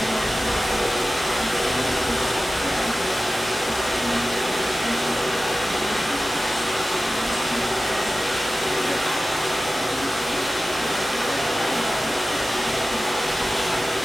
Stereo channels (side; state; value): both; normal; correlation 0.95